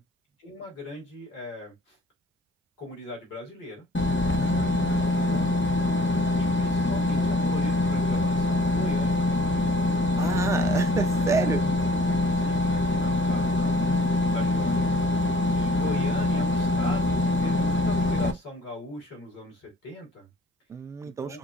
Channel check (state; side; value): normal; both; correlation 0.55